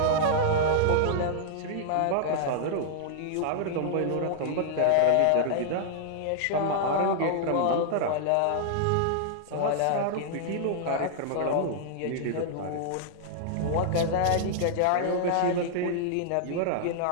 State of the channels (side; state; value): both; different; correlation -0.01